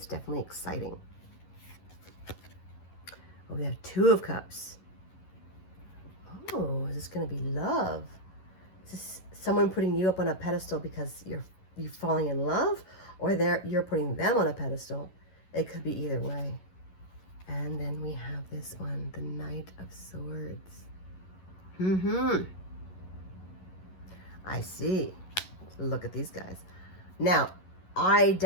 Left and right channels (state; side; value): late; right; 11 ms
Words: definitely exciting. Oh, we have 2 of Cups. Oh, is this going to be love? Is this someone putting you up on a pedestal because you're falling in love? Or you're putting them on a pedestal? It could be either way. And then we have this one, the Knight of Swords. I see. Look at these guys. Now, I